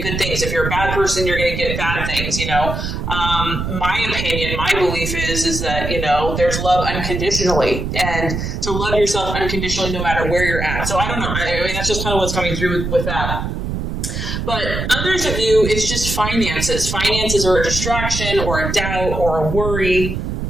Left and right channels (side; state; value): right; noise; rumble, 4 dB below the sound